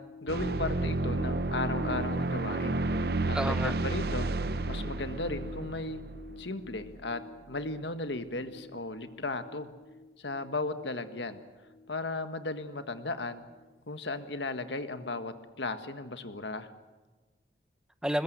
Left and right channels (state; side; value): normal; both; correlation 0.36